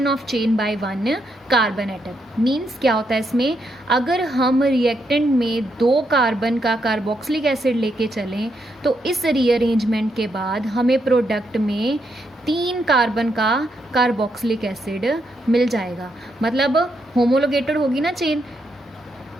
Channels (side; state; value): both; normal; correlation 0.79